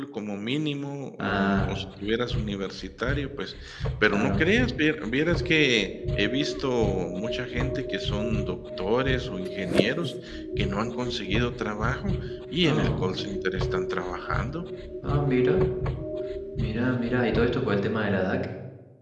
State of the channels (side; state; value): both; identical; correlation 1.00